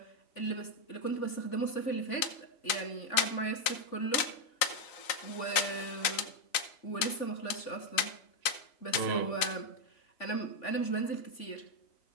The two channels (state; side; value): late; right; 3.8 ms